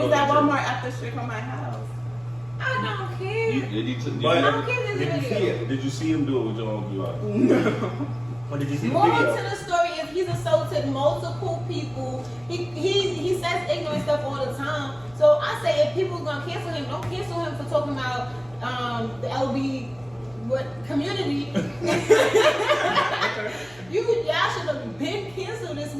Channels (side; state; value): right; noise; hum, 27 dB below the sound